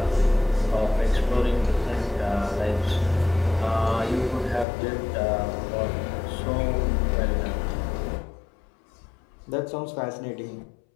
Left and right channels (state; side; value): drops out; right; at 4.7 s